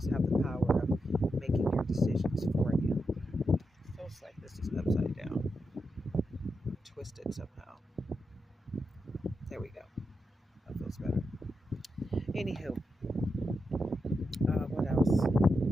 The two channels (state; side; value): normal; both; correlation 0.86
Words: have the power of making your decisions for you. Feels like this is upside down, twisted somehow. There we go. That feels better. Anywho, what else?